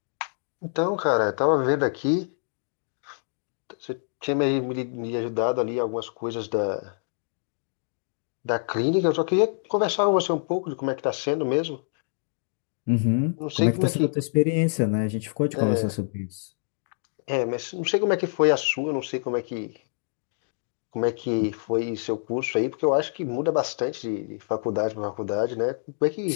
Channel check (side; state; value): right; silent; digital silence